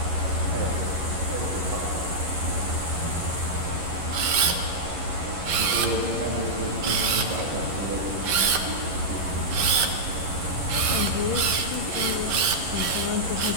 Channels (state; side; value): late; left; 11 ms